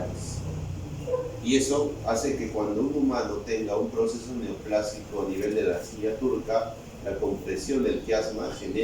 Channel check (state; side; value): identical; both; correlation 1.00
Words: Y eso hace que cuando un humano tenga un proceso neoplásico a nivel de la silla turca, la compresión del quiasma